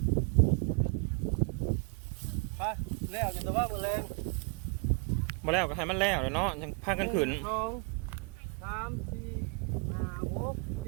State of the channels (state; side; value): quieter; left; 34.9 dB